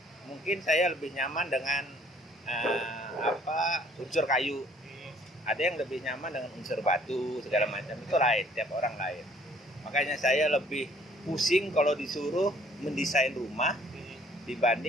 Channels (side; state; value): both; normal; correlation 0.60